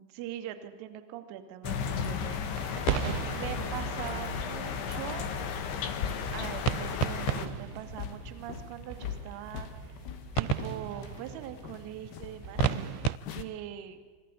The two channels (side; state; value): right; late; 15 ms